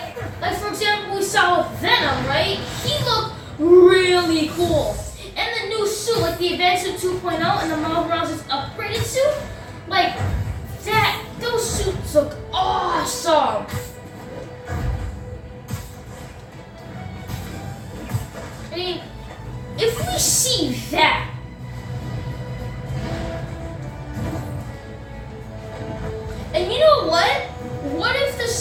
for example, we saw with Venom, right? He looked really cool. And the new suit, like the Advanced Suit 2.0 and the Miles Morales' upgraded suit, like those suits look awesome. I mean, if we see that, and you know what? What if the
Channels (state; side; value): identical; both; correlation 1.00